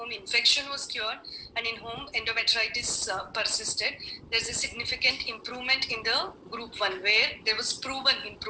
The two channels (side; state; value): both; identical; correlation 1.00